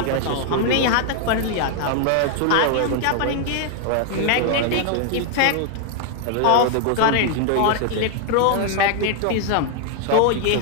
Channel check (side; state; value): both; different; correlation 0.00